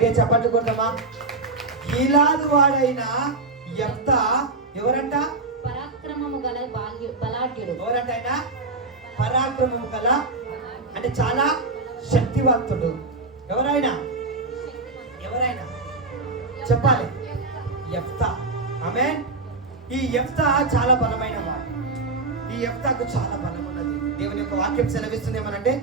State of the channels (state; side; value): quieter; left; 3.5 dB